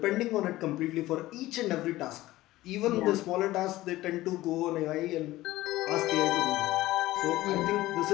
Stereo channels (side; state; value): right; quieter; 16.9 dB